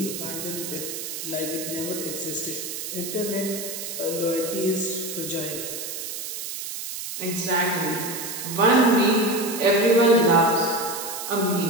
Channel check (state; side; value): noise; right; hiss, 7 dB below the sound